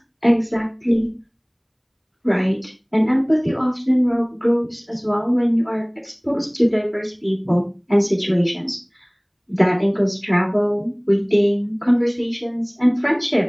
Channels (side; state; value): both; identical; correlation 1.00